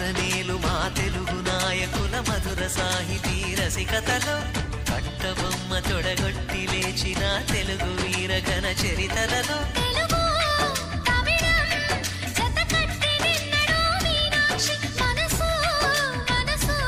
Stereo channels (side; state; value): both; identical; correlation 1.00